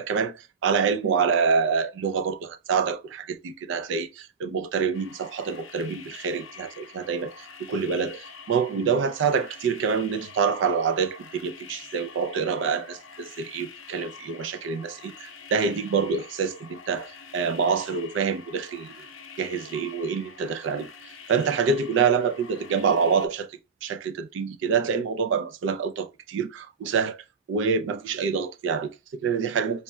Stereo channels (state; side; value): quieter; left; 5.4 dB